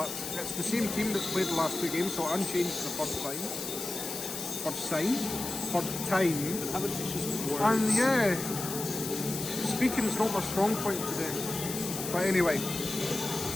it's the same team that's played the last 2 games, so unchanged for the first time. Having issues with words. And yeah, speaking is not my strong point today. But anyway,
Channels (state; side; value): noise; left; hiss, 6 dB below the sound